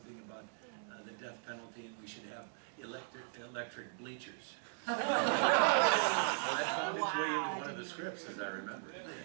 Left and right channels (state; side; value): silent; left; digital silence